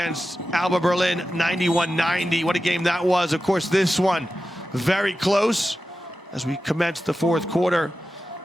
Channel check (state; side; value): normal; both; correlation 0.93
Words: Alba Berlin, 91-90. What a game that was. Of course, this one very close as we commence the 4th quarter.